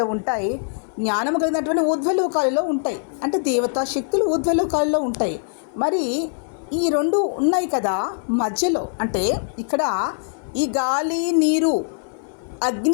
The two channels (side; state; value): right; silent; 58 dB below the other